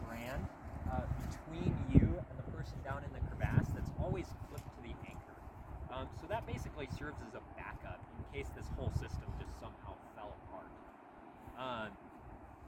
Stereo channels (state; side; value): identical; both; correlation 1.00